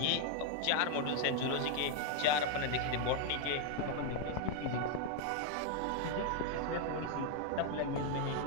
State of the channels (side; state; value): both; different; correlation 0.00